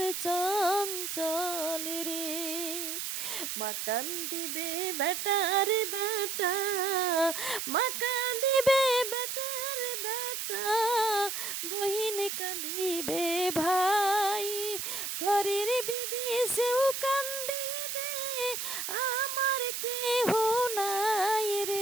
চঞ্চল রে। মা কান্দিবে বেটা রে বেটা, মা কাঁদিবে বেটা রে বেটা, বহিন কাঁদিবে ভাই, ঘরের বিবি সেও কান্দিবে, আমার কেহ নাই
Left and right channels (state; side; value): noise; right; hiss, 4 dB below the sound